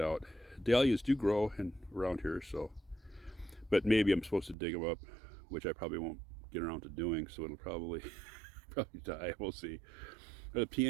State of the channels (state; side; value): drops out; left; at 4.5 s